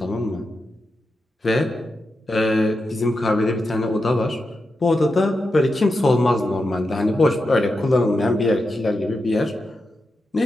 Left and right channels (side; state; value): both; normal; correlation 0.88